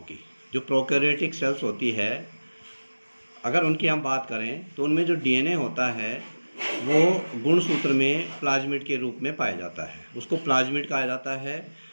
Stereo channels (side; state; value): both; inverted; correlation -1.00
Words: जो प्रोकैरियोटिक सेल्स होती है, अगर उनकी हम बात करें तो उनमें जो डीएनए होता है वो गुणसूत्र में प्लाज्मिड के रूप में पाया जाता है, उसको प्लाज्मिड कहा जाता है।